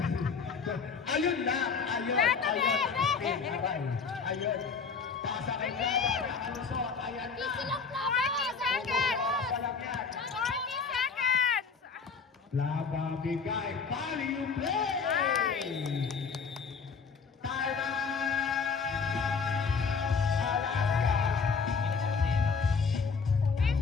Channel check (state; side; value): quieter; right; 5.4 dB